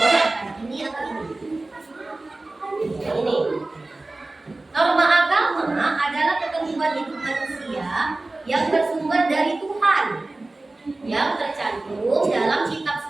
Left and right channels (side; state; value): left; quieter; 3.0 dB